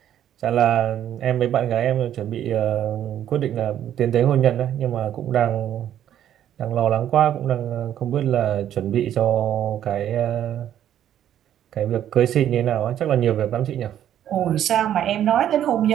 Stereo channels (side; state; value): left; quieter; 10.8 dB